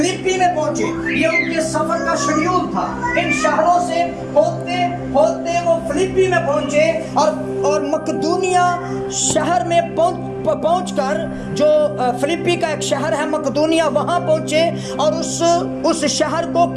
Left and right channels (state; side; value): identical; both; correlation 1.00